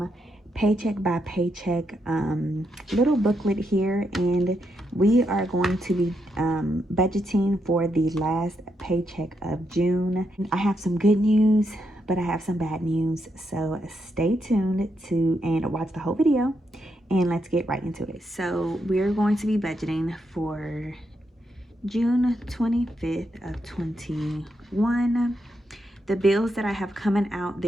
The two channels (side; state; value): both; normal; correlation 0.81